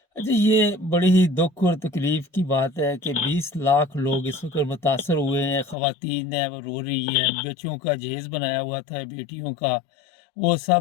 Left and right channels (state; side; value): drops out; right; at 5.8 s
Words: अच्छा, ये बड़ी ही दुख और तकलीफ की बात है कि 20 लाख लोग इस वक्त मुतासर हुए हैं। ख़वातीन हैं वो रो रही हैं, बच्चों का जहेज बनाया हुआ था बेटियों का, वो